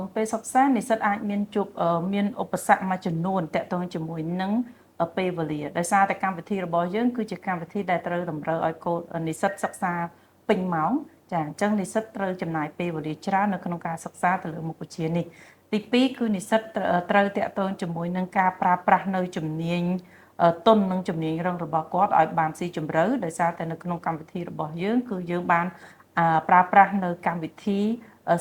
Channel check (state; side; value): identical; both; correlation 1.00